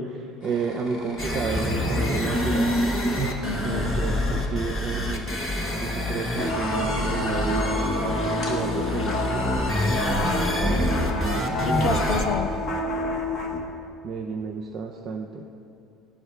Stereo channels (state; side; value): normal; both; correlation 0.58